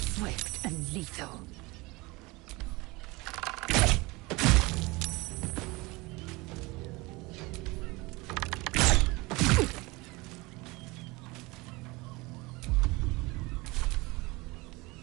Swift and lethal.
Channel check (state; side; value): quieter; left; 23.6 dB